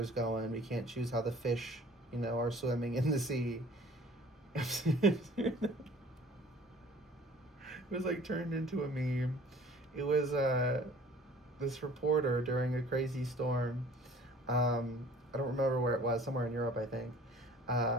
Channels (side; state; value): both; normal; correlation 0.50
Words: going. We can't choose how the fish, are swimming in the sea. It was like turned into a meme. It was this reporter during a crazy storm. I don't remember where it was. Somewhere in Europe, I think.